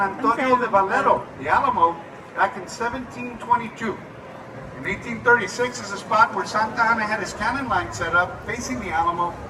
de Valero, the Alamo, back in 1722. In 1836 is the spot where Santa Anna had his cannon line set up facing the Alamo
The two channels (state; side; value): identical; both; correlation 1.00